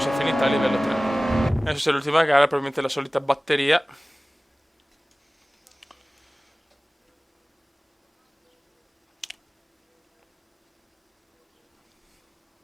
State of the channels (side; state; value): both; normal; correlation 0.98